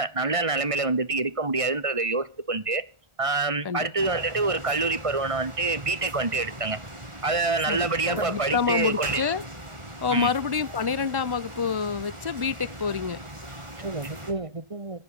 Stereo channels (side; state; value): left; late; 1.6 ms